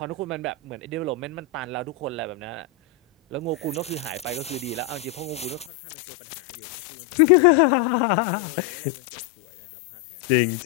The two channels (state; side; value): drops out; right; at 5.7 s